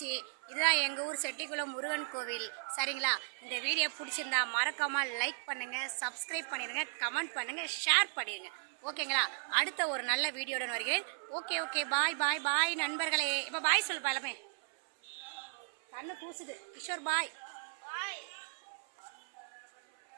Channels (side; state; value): left; silent; 54 dB below the other